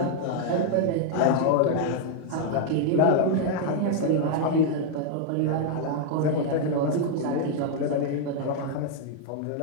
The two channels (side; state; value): both; different; correlation 0.00